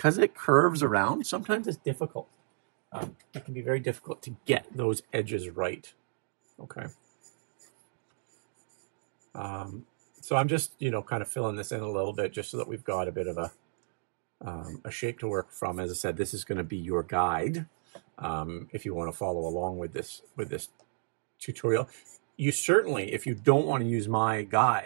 it curves around, sometimes it's difficult. It can be very difficult to get those edges right, okay? So I'm just, you know, kind of filling this in a little bit just so that we've got a bit of a shape to work from. As I said, this is going to be your guide if you want to follow along with this tutorial. You certainly, if you don't want to use my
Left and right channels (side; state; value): left; silent; digital silence